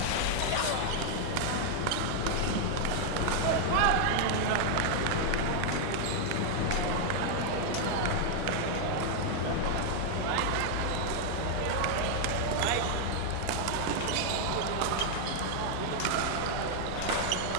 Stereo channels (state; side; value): different; both; correlation 0.00